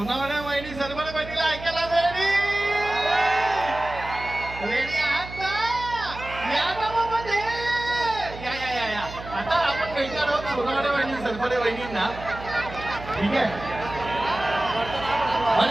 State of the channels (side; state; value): right; noise; hum, 13 dB below the sound